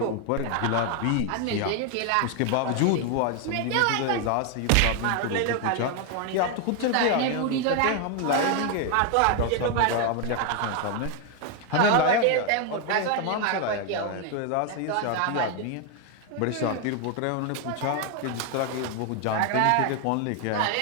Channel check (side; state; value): both; different; correlation 0.01